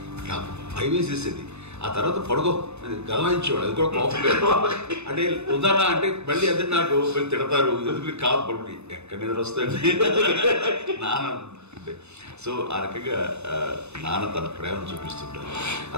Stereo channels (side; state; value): left; late; 0.81 ms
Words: నాకు భయం వేసేసేది. ఆ తర్వాత పడుకో గదవాయించేవాడు, అది కూడా కోపం. అంటే ఉదాహరణ అంటే మళ్ళీ అది నాకు తిడతారు, ఎందుకు కాదు పడుకుని ఎక్కడ నిద్ర వస్తాయండి నాన్న అంటే. సో ఆ రకంగా నాన్న తన ప్రేమ చూపిస్తుంటాను.